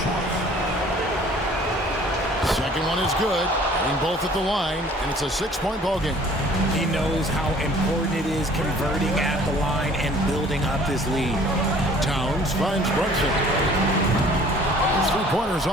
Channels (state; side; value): normal; both; correlation 0.53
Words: Second one is good. Hitting both at the line, and it's a 6-point ball game. He knows how important it is converting at the line and building up this lead. Towns finds Brunson. His 3-pointer's